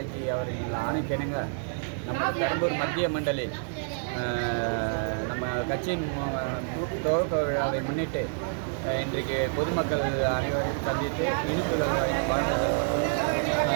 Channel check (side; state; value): left; silent; digital silence